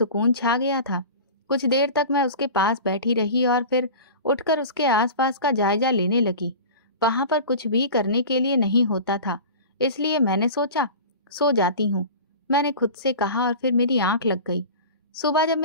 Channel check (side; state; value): both; inverted; correlation -0.35